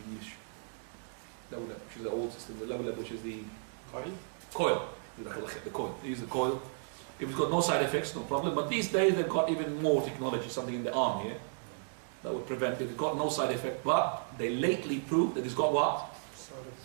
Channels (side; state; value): left; silent; digital silence